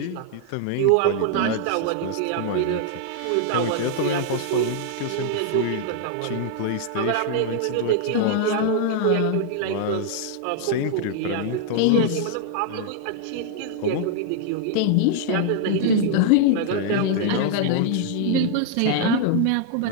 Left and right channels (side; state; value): both; different; correlation -0.01